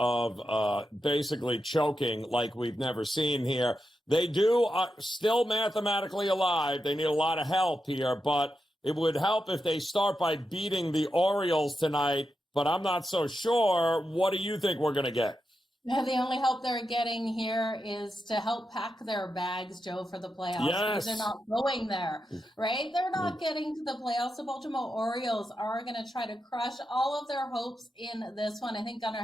basically choking like we've never seen here? They do still mathematically alive. They need a lot of help here, but it would help if they start by beating the Orioles tonight, but I'm not so sure. What do you think we're going to get? No, the only help they're getting here is to help pack their bags, Joe, for the playoffs. Yes. Because they're not going there, right? They're not getting to the playoffs. The Baltimore Orioles are going to try to crush all of their hopes in this one. I think Gunnar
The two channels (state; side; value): normal; both; correlation 0.87